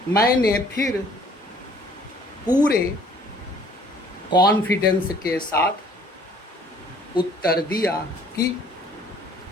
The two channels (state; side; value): normal; both; correlation 0.57